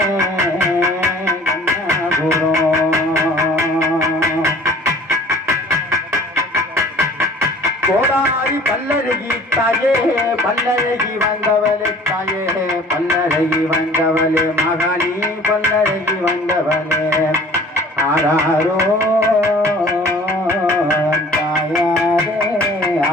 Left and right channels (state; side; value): normal; both; correlation 0.49